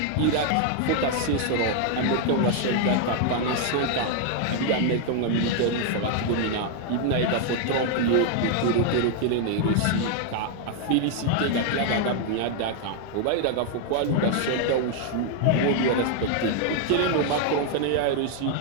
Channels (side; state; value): both; different; correlation 0.00